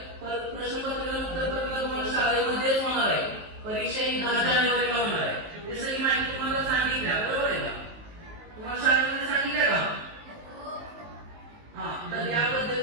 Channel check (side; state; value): left; late; 19 ms